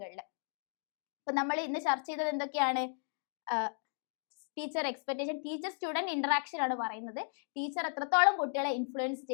അപ്പൊ നമ്മൾ ഇന്ന് ചർച്ച ചെയ്തത് എന്തൊക്കെയാണ്? Teacher expectation, teacher student interaction ആണ് പറയുന്നത്. ടീച്ചർ എത്രത്തോളം കുട്ടികളെ ഇൻഫ്ലുവൻസ്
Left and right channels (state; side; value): silent; right; digital silence